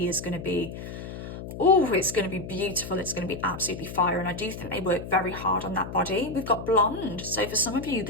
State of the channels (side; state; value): left; noise; hum, 9 dB below the sound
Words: is going to be, oh, it's going to be beautiful. It's going to be absolutely fire. And I do think they work very hard on that body. We've got blonde. So for some of you,